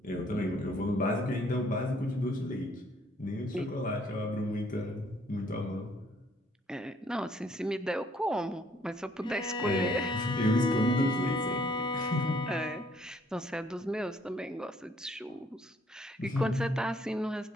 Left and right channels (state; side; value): normal; both; correlation 0.64